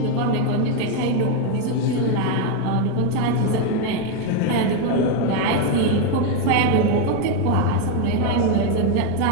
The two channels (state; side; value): different; both; correlation 0.02